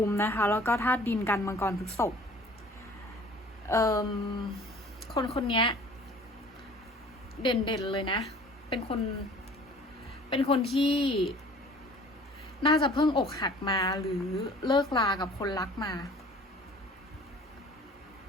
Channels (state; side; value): normal; both; correlation 0.49